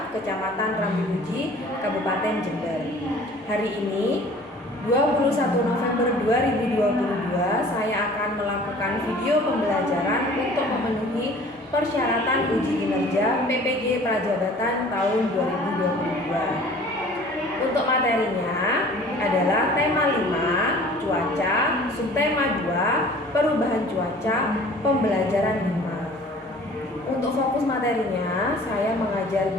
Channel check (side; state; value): both; normal; correlation 0.48